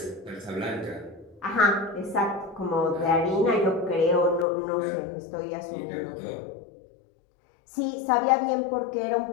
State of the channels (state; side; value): drops out; right; at 4.5 s